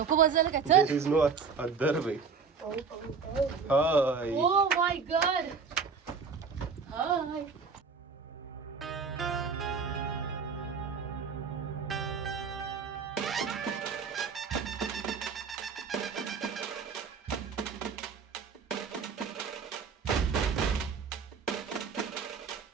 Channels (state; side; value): quieter; left; 5.5 dB